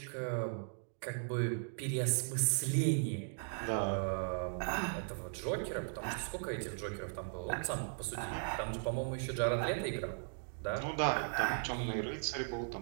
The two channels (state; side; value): silent; left; digital silence